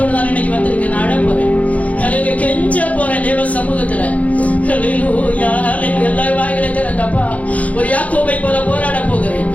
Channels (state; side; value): late; right; 0.069 ms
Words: நான் இன்னைக்கு வந்திருக்கேன். நான் அழ போறேன். ஹல்லேலூயா. கெஞ்ச போறேன் தேவ சமூகத்துல. ஹல்லேலூயா. ஹல்லேலூயா. எல்லா வாய்களை திறந்தப்பா, ஒரு யாக்கோபை போல போராட போகிறேன்.